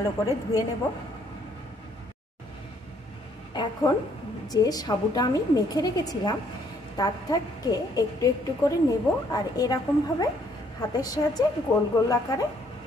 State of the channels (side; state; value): both; normal; correlation 0.66